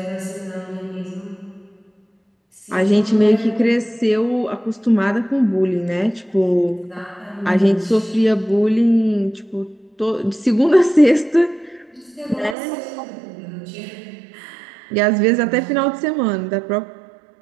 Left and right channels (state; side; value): drops out; left; at 12.6 s